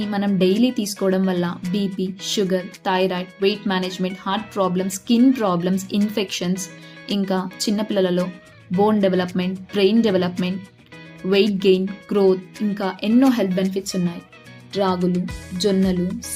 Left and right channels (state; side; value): identical; both; correlation 1.00